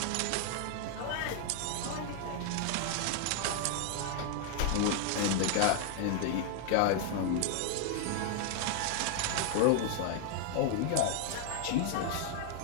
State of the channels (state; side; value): different; both; correlation 0.00